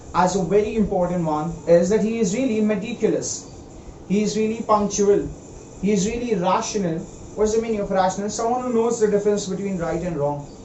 as a very important one is that he is really meticulous. He is really punctual. He is really rational. What's the meaning of rational? Someone who knows the difference between right and wrong.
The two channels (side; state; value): both; identical; correlation 1.00